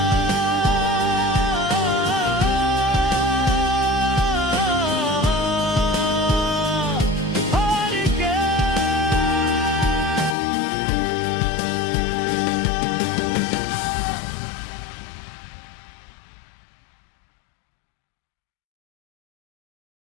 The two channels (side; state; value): right; drops out; at 10.4 s